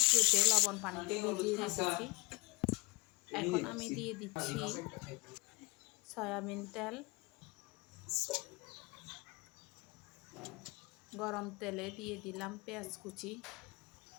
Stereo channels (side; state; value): right; quieter; 26.0 dB